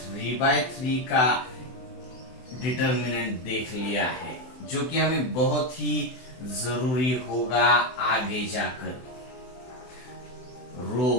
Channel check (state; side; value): late; right; 24 ms